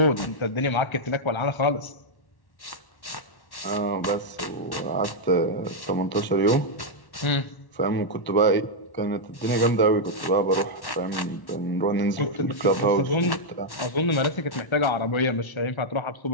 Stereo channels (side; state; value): right; late; 1.1 ms